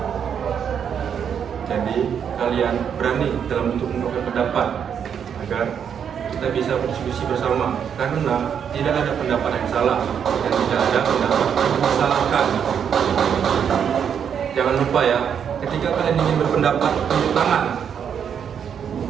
Jadi kalian berani dalam untuk mengungkapkan pendapat agar kita bisa berdiskusi bersama, karena tidak ada pendapat yang salah dan tidak ada pendapat yang disalahkan. Jangan lupa ya, ketika kalian ingin berpendapat, tunjuk tangan.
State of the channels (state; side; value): quieter; left; 7.9 dB